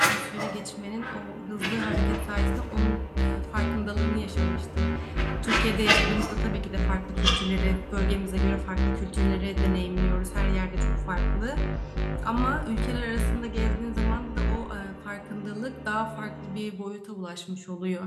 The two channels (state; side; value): identical; both; correlation 1.00